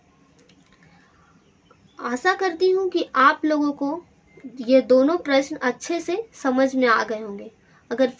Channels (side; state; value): both; identical; correlation 1.00